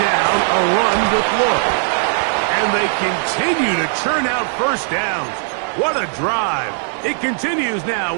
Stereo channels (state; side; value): silent; left; digital silence